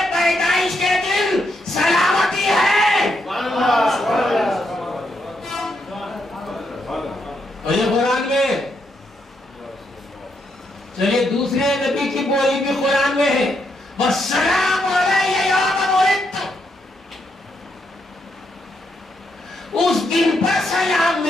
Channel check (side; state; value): both; normal; correlation 0.79